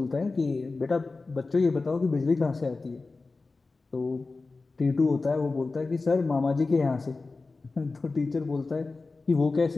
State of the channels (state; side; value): quieter; right; 3.7 dB